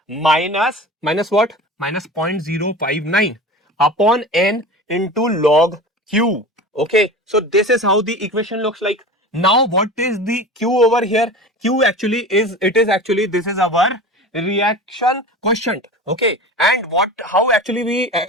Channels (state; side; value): normal; both; correlation 0.34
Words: minus what, minus 0.059 upon N into log Q. Okay, so this is how the equation looks like. Now what is the Q over here? Q actually is, this is our reaction quotient. Okay, and how actually we